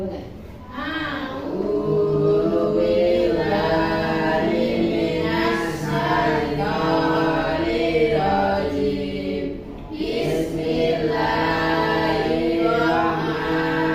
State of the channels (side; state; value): both; identical; correlation 1.00